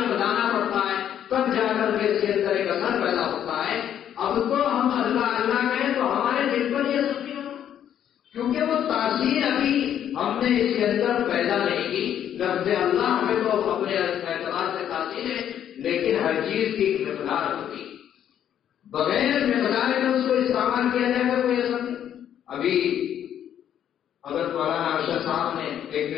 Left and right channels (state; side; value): quieter; right; 10.0 dB